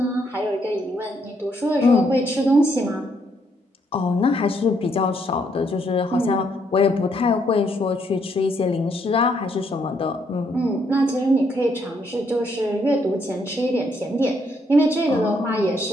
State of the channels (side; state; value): both; normal; correlation 0.73